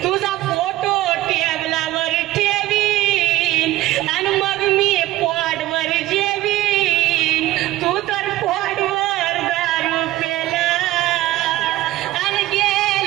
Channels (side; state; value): left; quieter; 16.3 dB